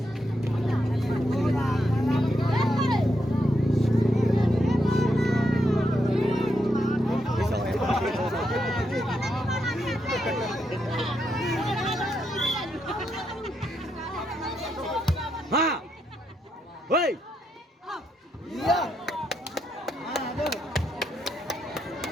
Ha! Hei! Iya.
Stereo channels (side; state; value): both; normal; correlation 0.81